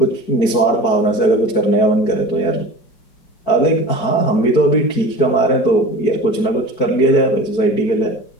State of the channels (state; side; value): late; right; 4.5 ms